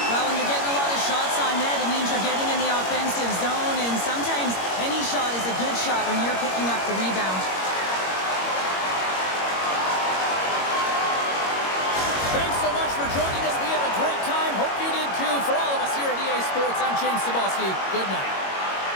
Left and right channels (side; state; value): right; late; 21 ms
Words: Well, when you're getting a lot of shots on net, it means you're getting in the offensive zone, and sometimes any shot is a good shot when you're picking up the rebound. Thanks so much for joining us. We had a great time. Hope you did too. For all of us here at EA Sports, I'm James Cebulski. Good night.